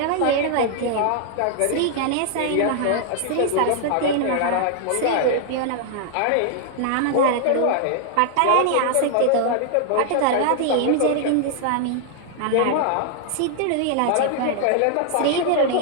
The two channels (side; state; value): both; different; correlation -0.01